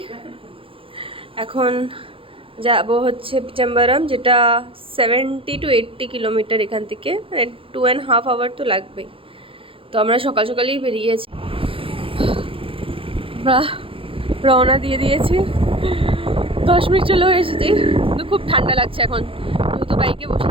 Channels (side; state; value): left; late; 0.26 ms